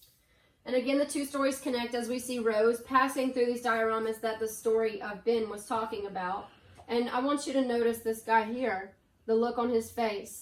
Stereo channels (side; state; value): both; identical; correlation 1.00